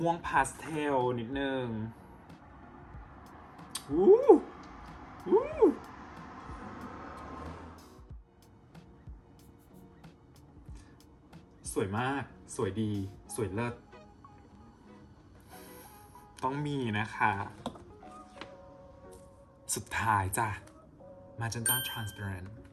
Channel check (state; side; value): identical; both; correlation 1.00